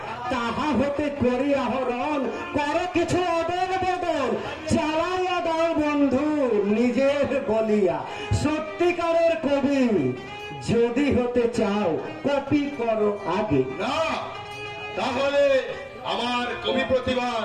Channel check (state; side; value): identical; both; correlation 1.00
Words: তাহা হতে করি আহরণ, করো কিছু অদল বদল, চালাইয়া দাও বন্ধু নিজের বলিয়া। সত্যিকারের কবি যদি হতে চাও কপি করো আগে। না, তাহলে আমার কবি প্রতিভার